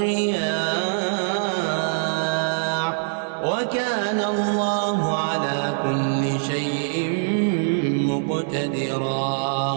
وكان الله على كل شيء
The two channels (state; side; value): silent; left; 56 dB below the other